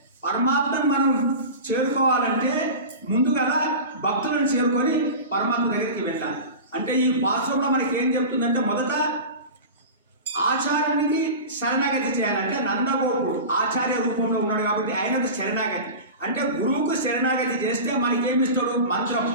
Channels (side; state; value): both; inverted; correlation -0.30